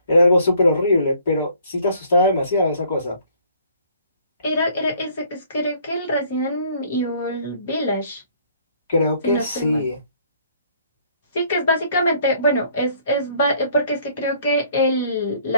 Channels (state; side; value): inverted; both; correlation -0.60